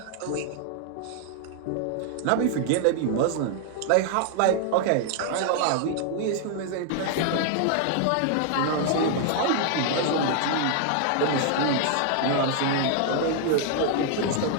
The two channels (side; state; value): both; different; correlation 0.00